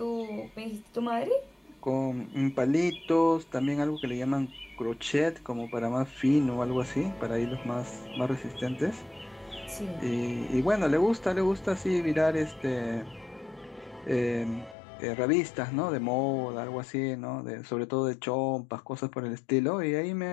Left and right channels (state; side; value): drops out; right; at 14.8 s